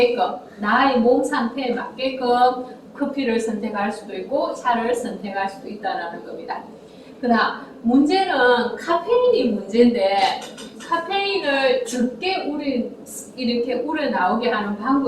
나의 몸 상태에 맞게끔 커피를 선택할 수도 있고 차를 선택할 수도 있다는 겁니다. 그다음 문제는 카페인이 문제인데 카페인을 적게 이렇게 우려 나오게 하는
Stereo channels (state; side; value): identical; both; correlation 1.00